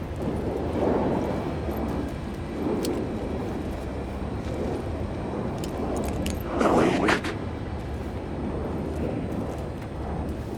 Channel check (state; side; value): identical; both; correlation 1.00